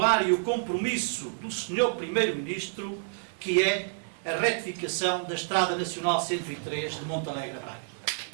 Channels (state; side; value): silent; left; digital silence